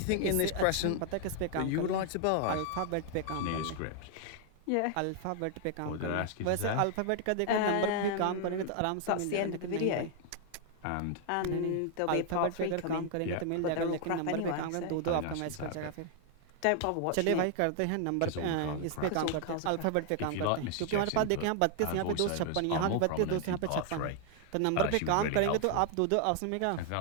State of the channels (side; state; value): both; different; correlation 0.00